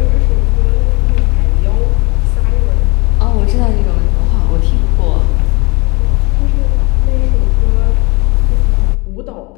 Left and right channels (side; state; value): right; quieter; 26.8 dB